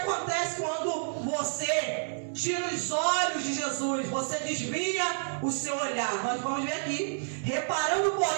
quando você tira os olhos de Jesus? Você desvia o seu olhar. Nós vamos ver aqui. Reparando,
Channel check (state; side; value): silent; left; 58 dB below the other